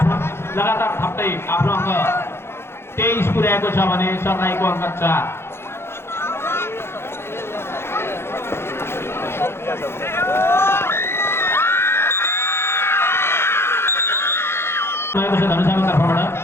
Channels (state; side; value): late; right; 0.12 ms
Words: लगातार थप्दै आफ्नो अङ्क 23 पुर्याएको छ भने सरलाईको अङ्क 4। भएको छ धनुषाको तर्फबाट।